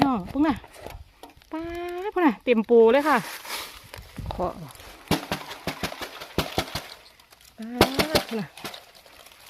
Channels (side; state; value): both; identical; correlation 1.00